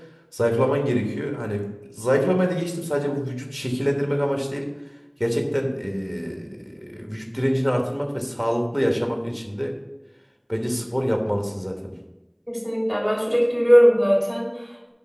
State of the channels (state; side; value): identical; both; correlation 1.00